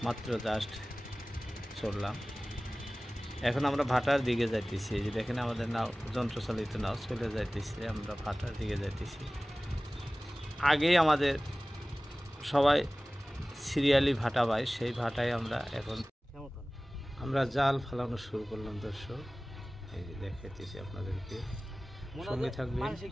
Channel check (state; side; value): normal; both; correlation 0.98